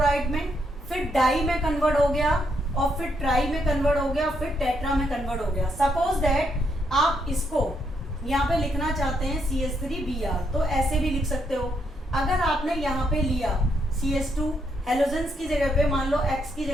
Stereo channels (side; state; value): both; normal; correlation 0.76